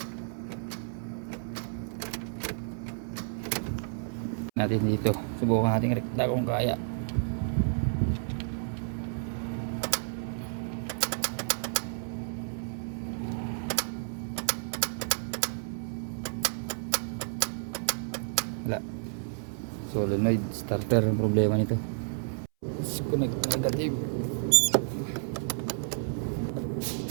Natin dito, subukan natin rekta kung kaya. Wala, solenoid starter ang problema nito. Disconnect negative.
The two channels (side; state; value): left; silent; 57 dB below the other